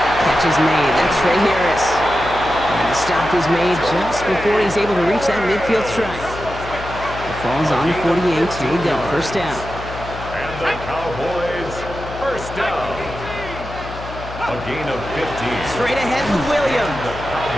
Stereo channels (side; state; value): left; noise; hum, 12 dB below the sound